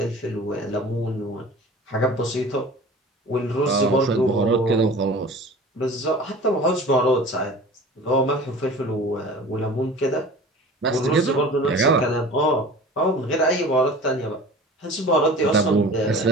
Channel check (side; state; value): both; normal; correlation 0.40